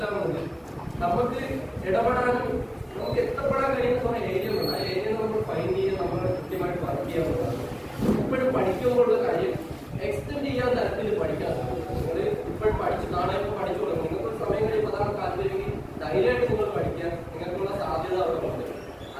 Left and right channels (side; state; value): both; identical; correlation 1.00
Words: നമുക്ക് ഇടപെടാനും നമുക്ക് എത്തപ്പെടാൻ കഴിയുന്ന കുറെ ഏരിയകളുണ്ട്. ആ ഏരിയ നമ്മൾ ഫൈൻഡ് ചെയ്യാൻ നമ്മൾ കൃത്യമായിട്ട് വർക്ക് ചെയ്യാവുന്നതാണ്. ഇപ്പോഴും പഠിക്കുമ്പോഴുള്ള കാര്യം എക്സ്റ്റെൻഡ് ചെയ്യാൻ തരത്തിൽ പഠിക്കാൻ നിങ്ങൾ ഇപ്പോഴും പഠിച്ച് നാളെ ഇപ്പോൾ പഠിച്ചു തുടങ്ങും. നിങ്ങൾക്ക് സമയം കഴിയുമ്പോൾ അതാണ് താല്പര്യമെങ്കിൽ ധൈര്യമായിട്ട് നിങ്ങൾ പഠിക്കാൻ നിങ്ങൾക്കുള്ള സാധ്യത അവിടെ ഉണ്ട്.